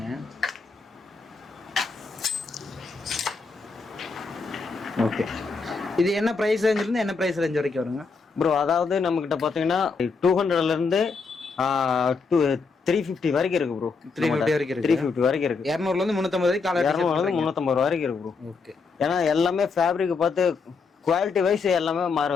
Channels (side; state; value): right; quieter; 4.7 dB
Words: ஓகே. இது என்ன பிரைஸ் ரேஞ்சில இருந்து என்ன பிரைஸ் ரேஞ்ச் வரைக்கும் வருங்க ப்ரோ? அதாவது நம்ம கிட்ட பாத்தீங்கன்னா 200ல இருந்து 350 வரைக்கும் இருக்கு ப்ரோ. 350 வரைக்கும் இருக்கு. 350 வரைக்கும் இருக்கு. 200ல இருந்து 350 வரைக்கும் காலர் 200ல இருந்து 350 வரைக்கும் இருக்கு ப்ரோ. ஓகே. ஏன்னா எல்லாமே ஃபேப்ரிக் பார்த்து குவாலிட்டி வைஸ் எல்லாமே